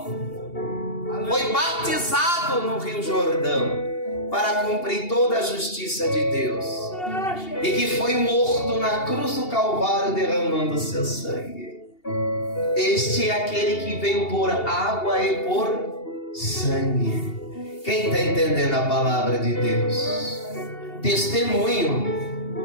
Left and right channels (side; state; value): right; late; 2.8 ms